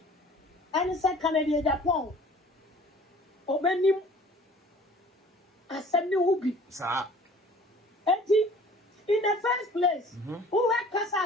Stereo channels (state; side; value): normal; both; correlation 0.49